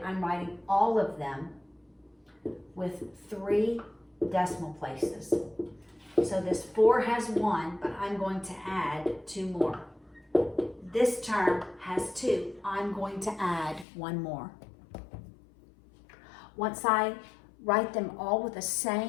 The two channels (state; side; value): drops out; right; at 13.9 s